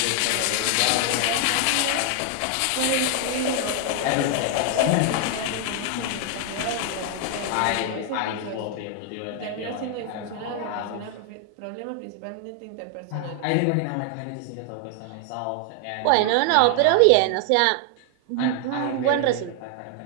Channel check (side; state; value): both; different; correlation 0.00